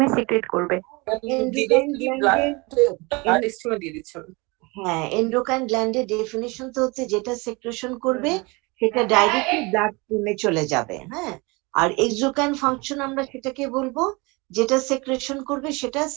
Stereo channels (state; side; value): quieter; left; 26.5 dB